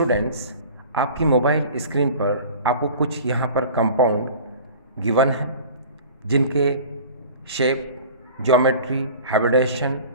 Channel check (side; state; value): both; inverted; correlation -0.42